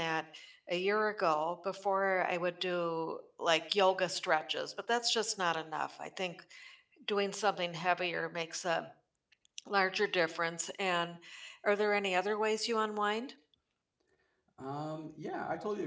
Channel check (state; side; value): identical; both; correlation 1.00